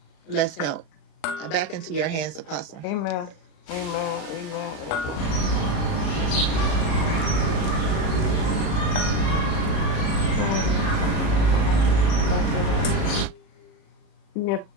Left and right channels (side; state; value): right; late; 37 ms